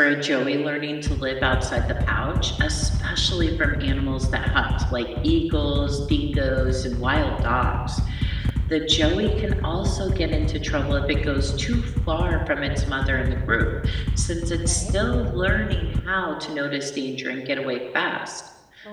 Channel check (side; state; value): both; identical; correlation 1.00